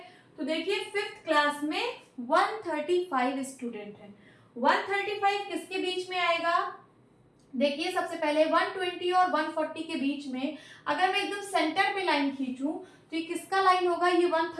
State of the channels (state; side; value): identical; both; correlation 1.00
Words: तो देखिए 5th क्लास में 135 स्टूडेंट है। 135 किसके बीच में आएगा? देखिए सबसे पहले 120 और 140 के बीच में अगर मैं एकदम सेंटर पे लाइन खींचूं तो ये किसका लाइन होगा? ये